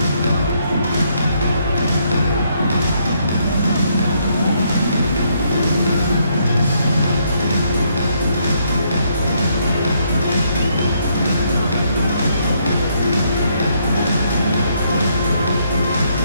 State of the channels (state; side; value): inverted; both; correlation -0.72